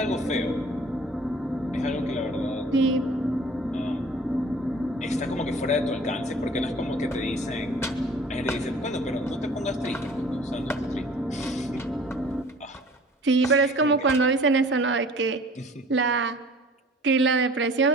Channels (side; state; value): both; normal; correlation 0.48